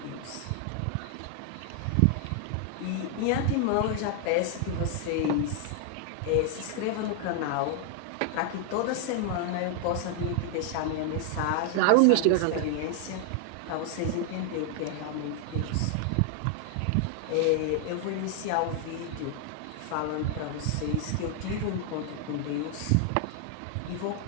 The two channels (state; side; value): different; both; correlation 0.00